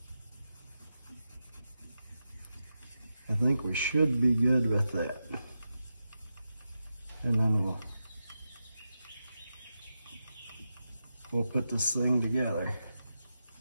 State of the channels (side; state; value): both; inverted; correlation -0.89